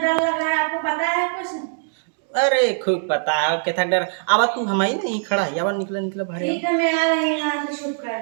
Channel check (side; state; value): left; silent; digital silence